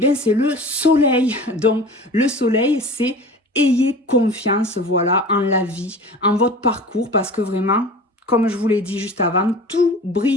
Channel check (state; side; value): normal; both; correlation 0.38